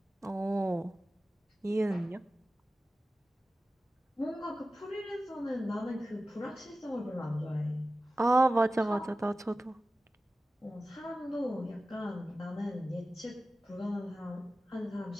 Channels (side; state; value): both; normal; correlation 0.95